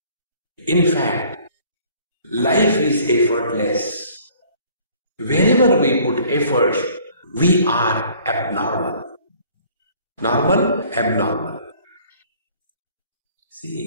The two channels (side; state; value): both; inverted; correlation -0.55